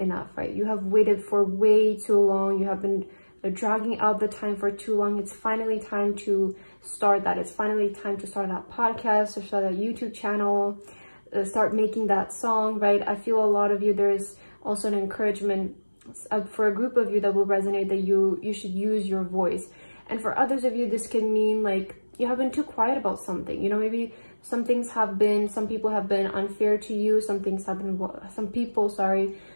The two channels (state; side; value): inverted; both; correlation -1.00